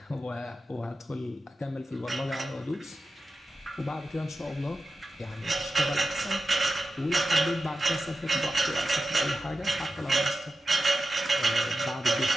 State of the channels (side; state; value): both; normal; correlation 0.92